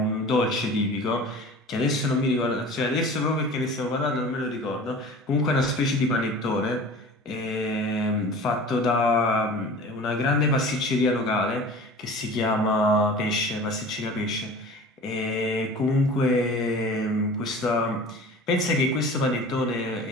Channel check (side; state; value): both; normal; correlation 0.40